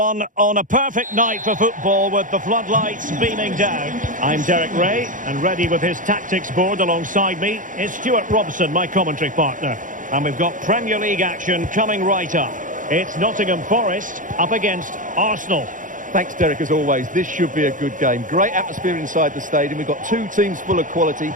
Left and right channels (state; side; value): late; left; 0.38 ms